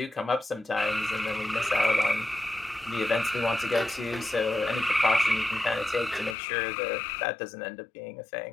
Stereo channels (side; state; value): right; drops out; at 6.4 s